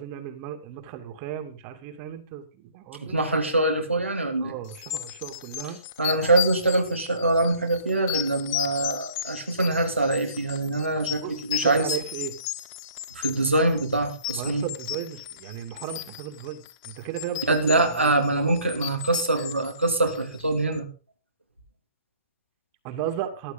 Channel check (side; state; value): both; inverted; correlation -0.55